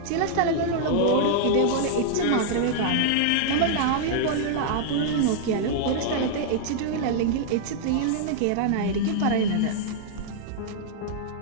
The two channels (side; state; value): both; different; correlation -0.01